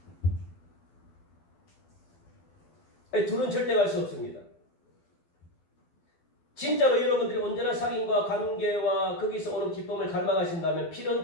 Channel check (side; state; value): right; late; 12 ms